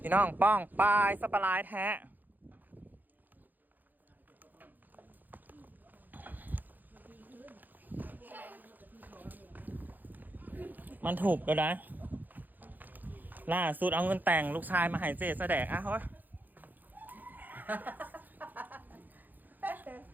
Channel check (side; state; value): left; late; 0.085 ms